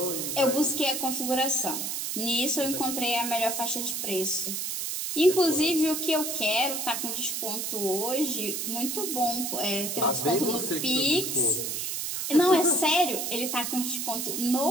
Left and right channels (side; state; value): right; noise; hiss, 3 dB below the sound